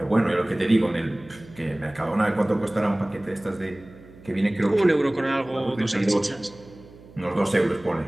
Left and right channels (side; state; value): right; noise; hum, 22 dB below the sound